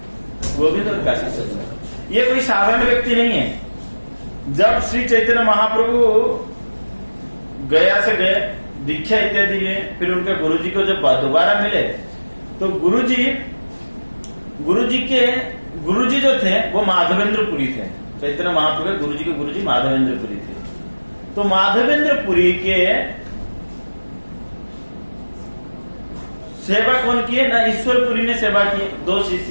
गोविंद और काशीश्वर पंडित। ये कोई साधारण व्यक्ति नहीं है। जब श्री चैतन्य महाप्रभु गया से गए, दीक्षा इत्यादि लिए, फिर उनके गुरुजी को जब दोबारा मिले, तो गुरुजी जो थे वो माधवेंद्रपुरी थे। चैतन्य महाप्रभु गुरुजी के गुरुजी माधवेंद्रपुरी थे। तो माधवेंद्रपुरी के सेवा कौन की है ना, ईश्वरपुरी ने सेवा की। दो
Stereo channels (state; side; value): inverted; both; correlation -1.00